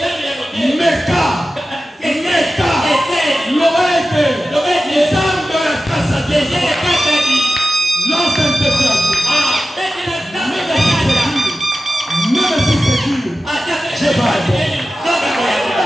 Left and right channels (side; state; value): both; normal; correlation 0.93